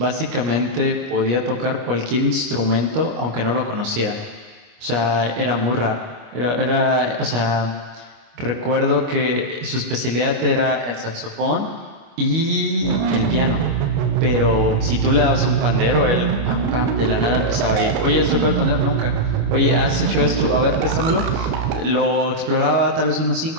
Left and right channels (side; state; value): left; late; 25 ms